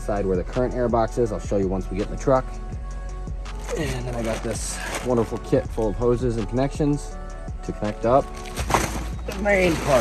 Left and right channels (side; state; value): both; identical; correlation 1.00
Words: where the current air box is. I'll show you once we get in the truck. And then I got this wonderful kit full of hoses and connections to connect up the main